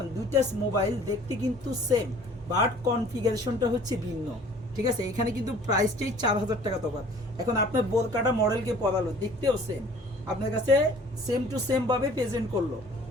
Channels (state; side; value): normal; both; correlation 0.51